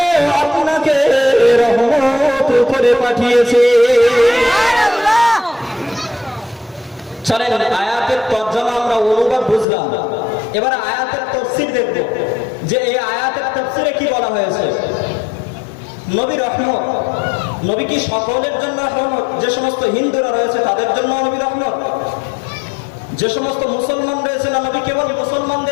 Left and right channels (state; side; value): drops out; right; at 9.7 s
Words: আপনাকে রহমত করে পাঠিয়েছে। চলেন আয়াতের তরজমা আমরা অনুবাদ বুঝলাম, এবার আয়াতের তাফসীর দেখব যে এই আয়াতের তাফসীরে কি বলা হয়েছে। নবী রহমত, নবী কি সকলের জন্য রহমত? যে সমস্ত হিন্দুরা রয়েছে তাদের জন্য নবী রহমত, যে সমস্ত মুসলমান রয়েছে না নবী কেবল